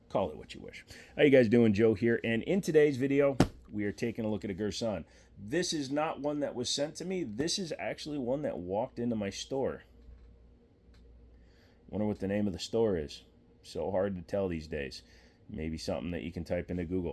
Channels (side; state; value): both; identical; correlation 1.00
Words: call it what you wish. How you guys doing? Joe here, and in today's video, we are taking a look at a Girsan. This is not one that was sent to me. This is actually one that walked into my store. Wonder what the name of the store is. So hard to tell these days. Maybe something that you can type into